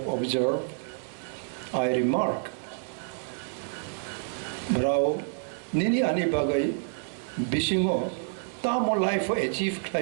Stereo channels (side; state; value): left; silent; digital silence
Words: observed, I remark, brau nini ani bagai bisingo tamo life achieve